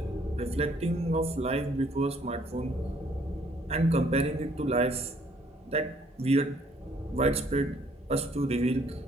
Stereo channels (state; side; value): normal; both; correlation 0.63